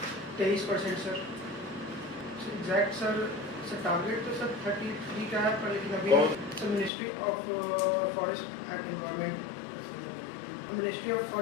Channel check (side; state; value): right; drops out; at 6.9 s